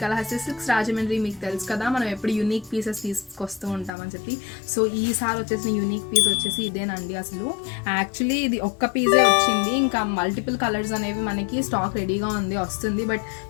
silks Rajahmundry. మీకు తెలుసు కదా మనం ఎప్పుడు యూనిక్ పీసెస్ తీసుకొస్తూ ఉంటామని చెప్పి. సో ఈసారి వచ్చేసిన యూనిక్ పీస్ వచ్చేసి ఇదేనండి. అసలు యాక్చువల్లీ ఇది ఒక్క పీసే వచ్చింది, ఇంకా మల్టిపుల్ కలర్స్ అనేవి మనకి స్టాక్ రెడీగా వస్తుంది. బట్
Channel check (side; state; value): right; drops out; at 3.9 s